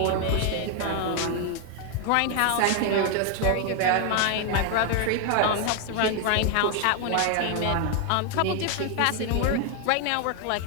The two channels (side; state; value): both; different; correlation 0.00